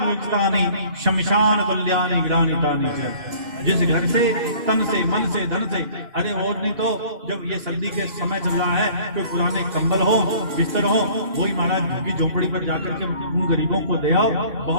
शमशान तुल्यानि ग्रानितानि च। जिस घर से तन से मन से धन से, अरे और नहीं तो जब ये सर्दी के समय चल रहा है तो पुराने कंबल हो बिस्तर हो वही महाराज झुग्गी झोपड़ी पर जाकर के उन गरीबों को दे आओ,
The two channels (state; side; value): late; left; 2.5 ms